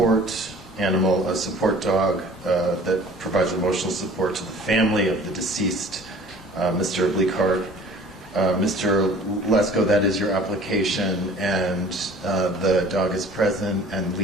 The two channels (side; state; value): both; normal; correlation 0.48